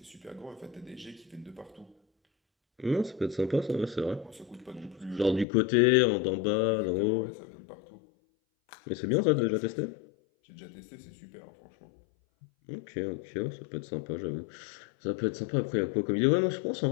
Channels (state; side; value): drops out; right; at 5.5 s